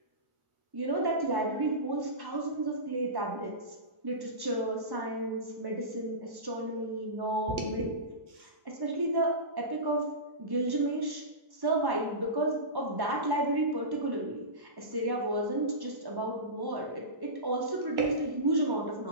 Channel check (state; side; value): late; left; 1.1 ms